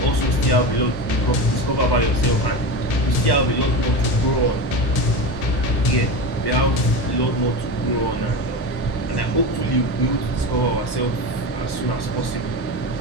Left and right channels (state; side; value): late; right; 1.1 ms